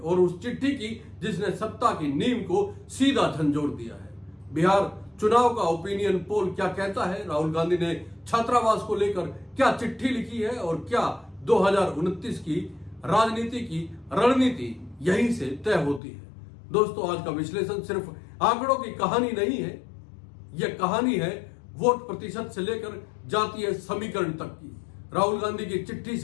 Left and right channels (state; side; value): drops out; right; at 16.0 s